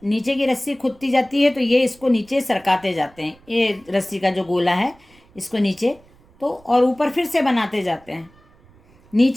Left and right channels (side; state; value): right; noise; rumble, 29 dB below the sound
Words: नीचे की रस्सी खुदती जाती है तो ये इसको नीचे सरकाते जाते हैं, ये रस्सी का जो गोला है इसको नीचे, तो और ऊपर फिर से बनाते जाते हैं।